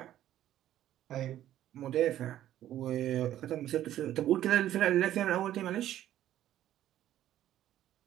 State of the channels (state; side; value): quieter; left; 12.5 dB